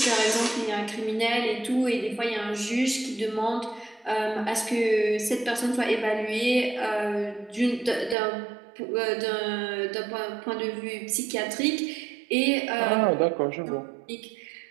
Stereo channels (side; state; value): left; drops out; at 8.2 s